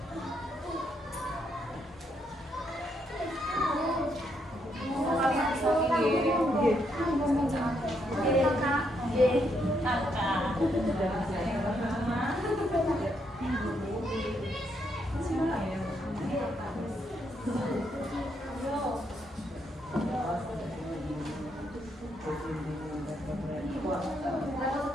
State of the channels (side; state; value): both; normal; correlation 0.76